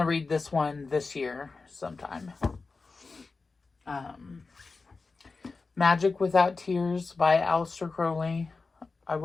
read this one this year sometime. Magic Without Tears by Aleister Crowley. I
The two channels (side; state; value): right; quieter; 4.1 dB